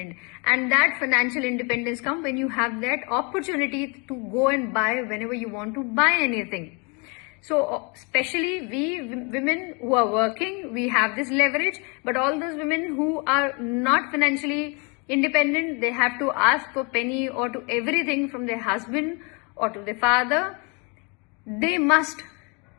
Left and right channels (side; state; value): right; quieter; 32.4 dB